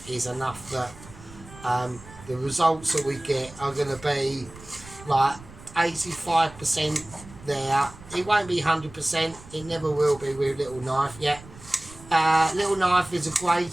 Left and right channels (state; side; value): noise; right; rumble, 19 dB below the sound